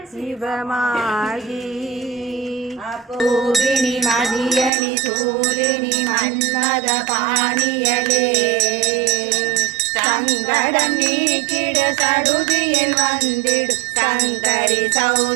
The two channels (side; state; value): left; drops out; at 4.7 s